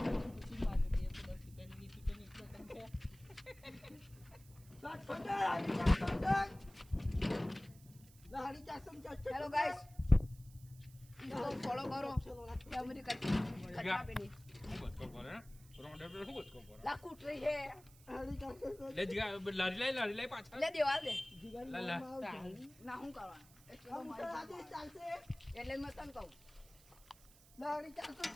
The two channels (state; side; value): noise; right; hiss, 24 dB below the sound